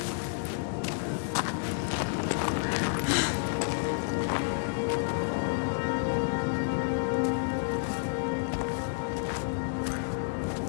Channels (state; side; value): silent; right; 56 dB below the other